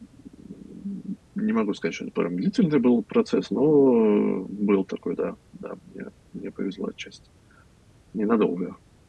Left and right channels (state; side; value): identical; both; correlation 1.00